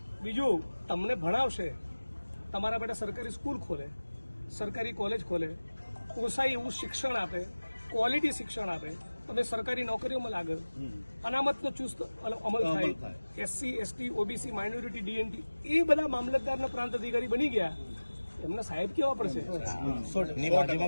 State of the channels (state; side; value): inverted; both; correlation -1.00